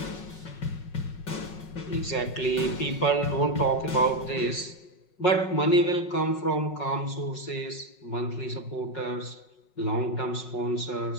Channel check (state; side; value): late; right; 5.5 ms